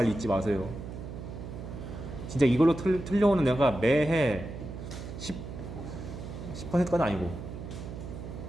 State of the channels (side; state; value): right; noise; hum, 9 dB below the sound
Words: 잊지 마세요. 진짜 이걸로 틀려오는 애가 매해 10%까지는 아니고